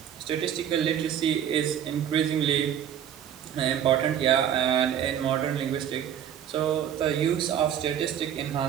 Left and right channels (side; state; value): left; quieter; 9.7 dB